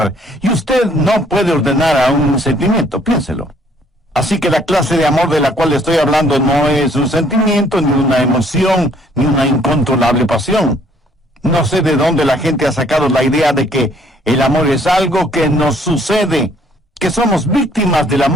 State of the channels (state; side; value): normal; both; correlation 0.62